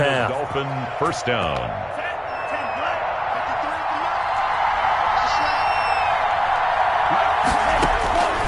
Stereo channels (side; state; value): both; identical; correlation 1.00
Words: Dolphin first down.